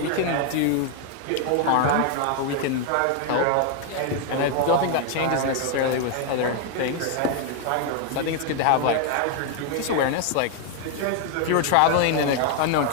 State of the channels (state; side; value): different; both; correlation 0.01